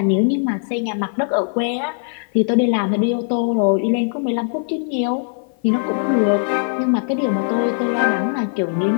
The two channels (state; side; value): silent; right; 55 dB below the other